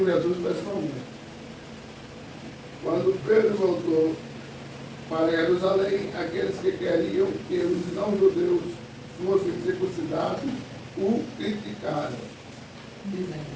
Jesus pessoalmente. Quando Pedro voltou para Jerusalém, aqueles que queriam que os não-judeus fossem circuncidados o criticaram, dizendo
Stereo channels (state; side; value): identical; both; correlation 1.00